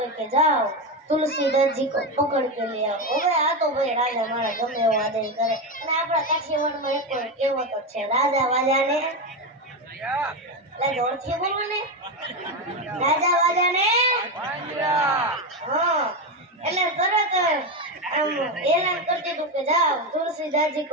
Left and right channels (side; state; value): both; normal; correlation 0.13